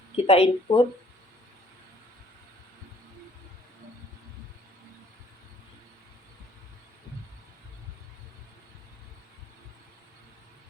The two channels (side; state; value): both; normal; correlation 0.59